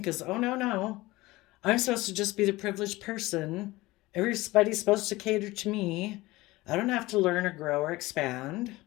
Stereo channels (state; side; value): quieter; right; 19.7 dB